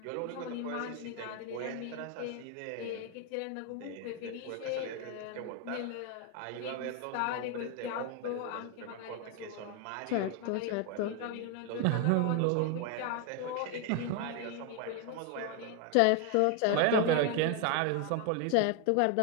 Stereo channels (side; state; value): both; different; correlation 0.01